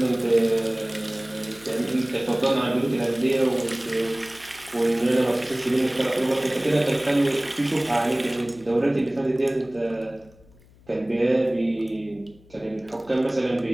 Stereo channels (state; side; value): noise; left; hum, 27 dB below the sound